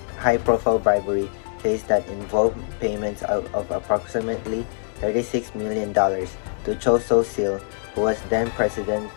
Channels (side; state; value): right; silent; 63 dB below the other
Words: bribery case that involved payments of approximately $36 million to Cho So-sil, who was then President